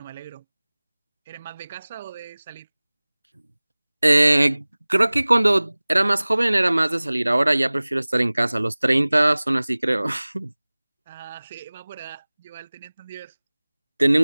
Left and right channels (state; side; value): inverted; both; correlation -1.00